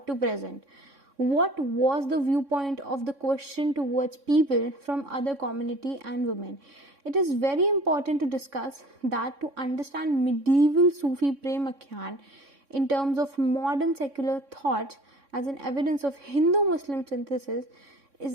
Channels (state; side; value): late; left; 3.6 ms